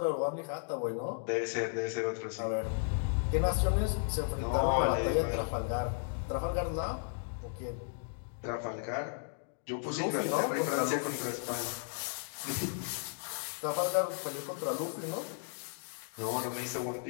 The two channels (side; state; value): right; silent; digital silence